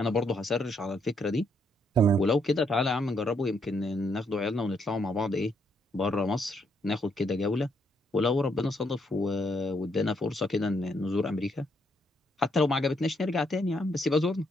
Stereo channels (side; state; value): both; normal; correlation 0.74